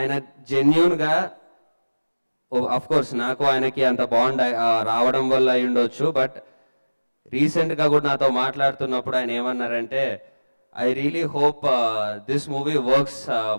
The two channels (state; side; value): inverted; both; correlation -1.00